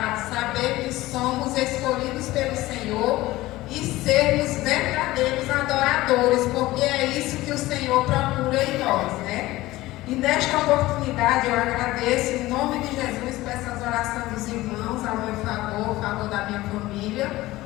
saber que somos escolhidos pelo Senhor e sermos verdadeiros adoradores, porque é isso que o Senhor procura em nós, né? E nesta oportunidade eu agradeço em nome de Jesus por essas orações dos irmãos, ao meu favor, favor da minha família,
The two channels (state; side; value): quieter; right; 17.8 dB